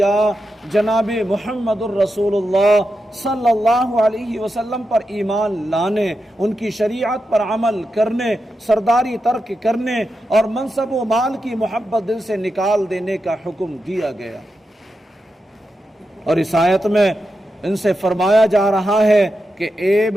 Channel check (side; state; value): both; normal; correlation 0.88